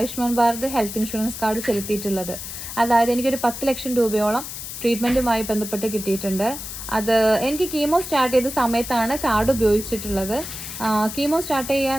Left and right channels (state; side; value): noise; left; hiss, 9 dB below the sound